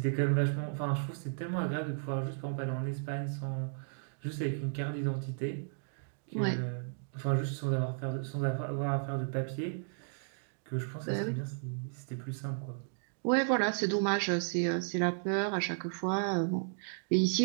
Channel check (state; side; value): silent; left; digital silence